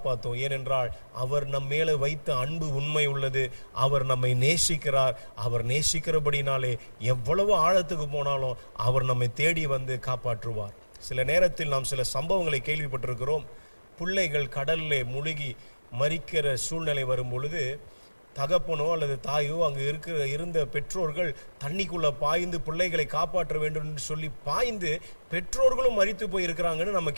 ஏனென்றால் அவர் நம் மேலே வைத்த அன்பு உண்மை உள்ளது. அவர் நம்மை நேசிக்கிறார். அவர் நேசிக்கிறபடினாலே எவ்வளவு ஆழத்துக்கு போனாலும் அவர் நம்மை தேடி வந்து காப்பாற்றுவார். சில நேரத்தில் நாம் சில சம்பவங்களை கேள்விப்பட்டிருக்கிறோம். பிள்ளைகள் கடல்ல முழுகி மரிக்கிற சூழ்நிலை வரும் பொழுது தகப்பனோ அல்லது தாயோ அங்கு இருந்த பெற்றோர்கள் தண்ணிக்குள்ள பாய்ந்து பிள்ளைகளை காப்பாற்ற வேண்டும் என்று சொல்லி பாய்ந்து பெற்றோர்களும் மரித்து போய் இருக்கிறாங்கன்னு நம்ம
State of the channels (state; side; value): inverted; both; correlation -1.00